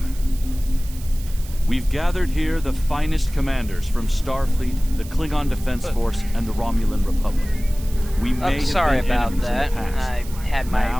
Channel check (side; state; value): right; noise; hiss, 18 dB below the sound